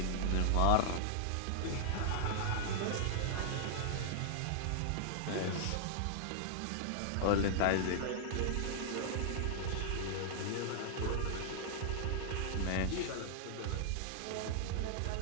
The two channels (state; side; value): different; both; correlation -0.01